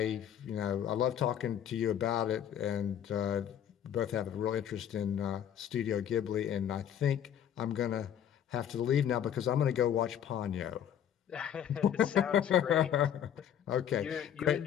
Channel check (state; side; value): quieter; right; 9.6 dB